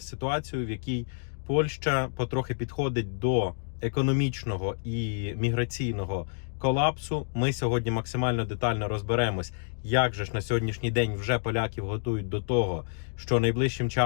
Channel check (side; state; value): right; silent; digital silence